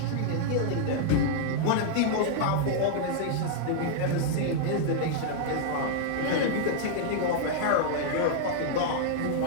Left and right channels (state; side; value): different; both; correlation -0.01